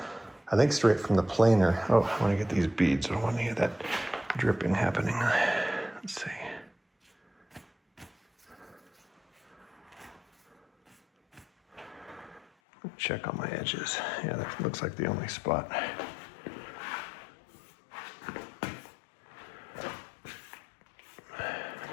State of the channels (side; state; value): right; drops out; at 12.5 s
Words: I think, straight from the planer. Oh, I want to get these beads. I don't want to get that dripping happening. Let's see. Check on my edges. Yeah, that looks like the only spot.